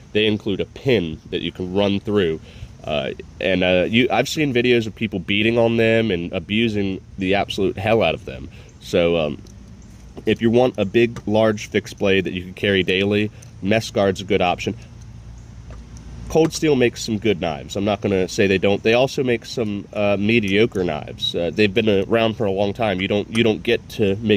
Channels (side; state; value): both; identical; correlation 1.00